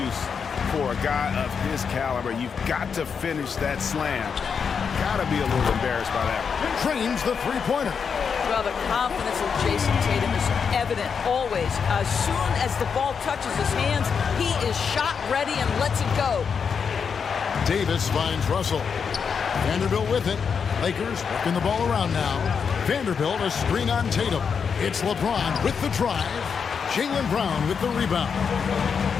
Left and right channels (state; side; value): quieter; right; 6.3 dB